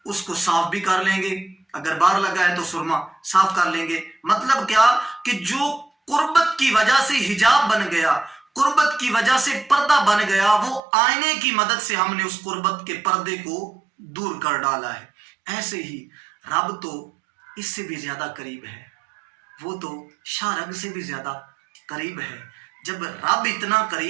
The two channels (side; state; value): left; drops out; at 10.8 s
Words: اس کو صاف بھی کر لیں گے، اگر باہر لگا ہے تو سرما صاف کر لیں گے۔ مطلب کیا کہ جو قربت کی وجہ سے حجاب بن گیا، قربت کی وجہ سے پردہ بن گیا، وہ آئینے کی مدد سے ہم نے اس قربت کے پردے کو دور کر ڈالا ہے۔ ایسے ہی رب تو اس سے بھی زیادہ قریب ہے، وہ تو شاہ رگ سے بھی زیادہ قریب ہے۔ جب رب اتنا